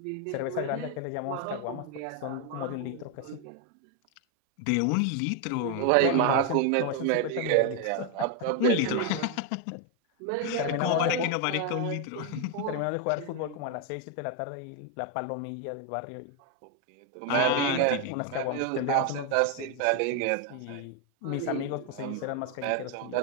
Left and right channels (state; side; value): different; both; correlation 0.01